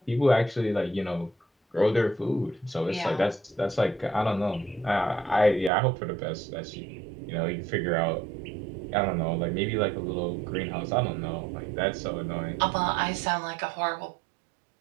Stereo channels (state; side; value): drops out; left; at 5.7 s